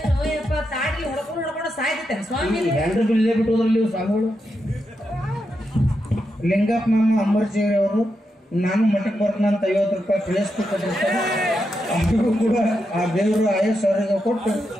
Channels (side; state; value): both; normal; correlation 0.85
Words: ತಾಡಿ ಹೊಡ್ಕೊಂಡು ಸಾಯ್ತೇನೆ ಸ್ವಾಮಿ ಹೆಂಡ್ರು ಇಲ್ಲೇ ಬಿಟ್ಟು ಹೋದ್ರಲ್ಲಿ ಸ್ವಾಮಿಗಳು ಲಿಂಗಪ್ಪ ಮಾಮ ಅಂಬರ್ಜಿಯವ್ರಿ ಅವರು ನಾನು ಮಠಕ್ಕೆ ಬರ್ತಾನಂತ 50 ರೂಪಾಯಿ ಪ್ಲೇಸ್ಟಿಕ್ ಕೊಟ್ಟಿರ್ತಾರೆ ಅವ್ರಿಗೂ ಕೂಡ ಆ ದೇವರು ಆಯಸ್ ಅವ್ರಿಗೆ ಕೊಟ್ಟು